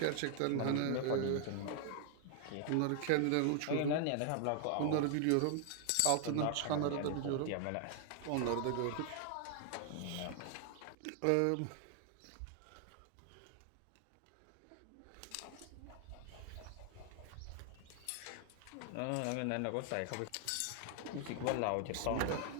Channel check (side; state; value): both; different; correlation 0.00